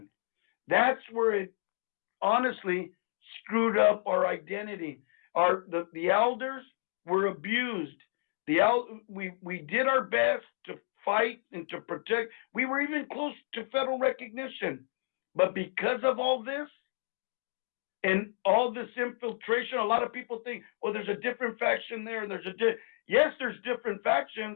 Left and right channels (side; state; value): right; silent; digital silence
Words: That's where it honestly screwed up our identity. The elders were abused. We did our best to fight and to protect. We were even close to federal recognition. But because of all this and all this infiltration, a lot of people think, well, there's a different faction there. And yes, there's different